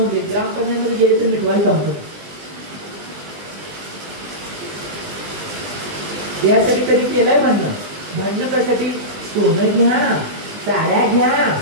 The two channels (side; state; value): left; late; 20 ms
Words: ग्रामपंचायतीमध्ये गेले तर मिटवायला सांगतो, यासाठी कधी केलंय भांडणं कशासाठी, सोनं घ्या, साड्या घ्या,